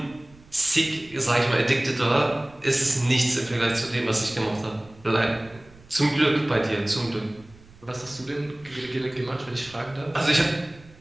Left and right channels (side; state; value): right; noise; rumble, 25 dB below the sound